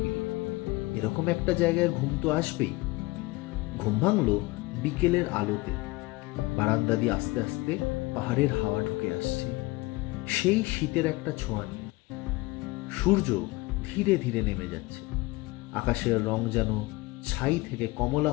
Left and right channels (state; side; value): quieter; right; 21.8 dB